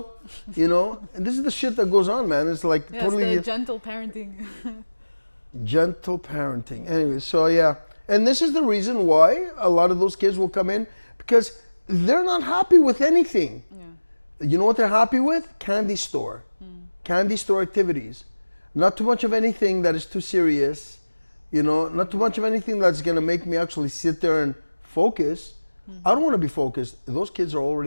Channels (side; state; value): both; inverted; correlation -1.00